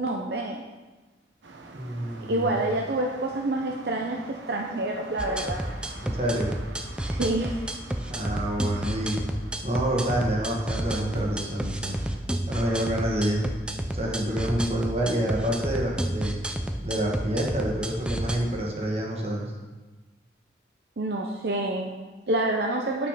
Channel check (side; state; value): both; normal; correlation 0.56